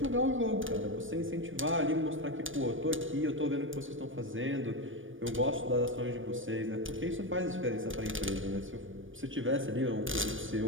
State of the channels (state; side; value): late; left; 0.57 ms